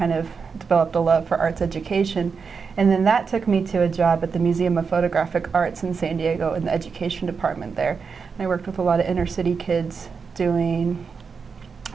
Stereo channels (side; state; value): left; quieter; 5.5 dB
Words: of developed a love for arts education, and then that took me to a job at the Museum of Photographic Arts in San Diego in the education department there. And I worked with a lot of inner city kids doing